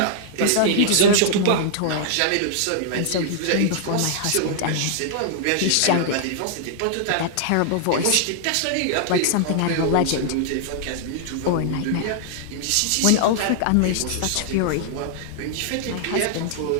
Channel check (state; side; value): different; both; correlation -0.01